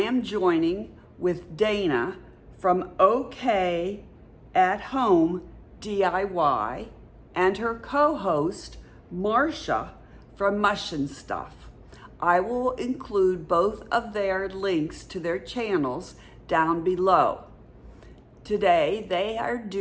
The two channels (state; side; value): identical; both; correlation 1.00